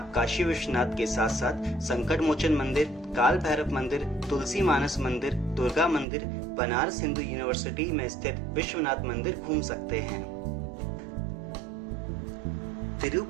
काशी विश्वनाथ के साथ साथ संकट मोचन मंदिर, काल भैरव मंदिर, तुलसी मानस मंदिर, दुर्गा मंदिर, बनारस हिंदू यूनिवर्सिटी में स्थित विश्वनाथ मंदिर घूम सकते हैं।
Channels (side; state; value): left; drops out; at 6.1 s